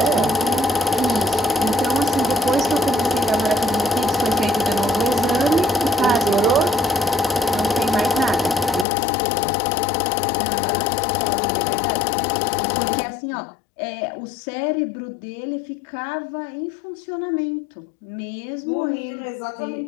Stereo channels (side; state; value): right; drops out; at 8.8 s